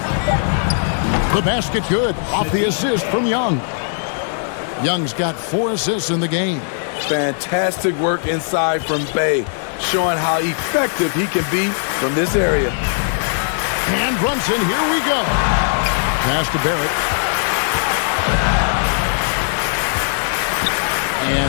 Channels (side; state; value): right; silent; 64 dB below the other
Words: The basket good off the assist from Young. Young's got 4 assists in the game. Fantastic work inside from Bey, showing how effective he can be from this area. And Brunson, here we go. Pass to Barrett.